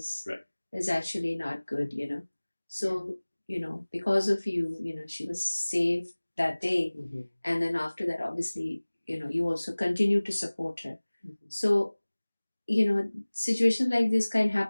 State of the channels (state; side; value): inverted; both; correlation -1.00